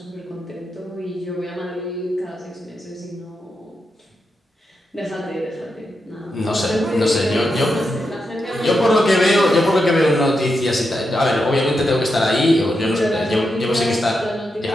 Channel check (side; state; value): both; normal; correlation 0.86